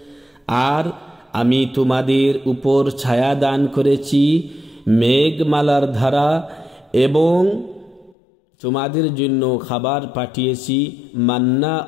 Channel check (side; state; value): right; drops out; at 8.2 s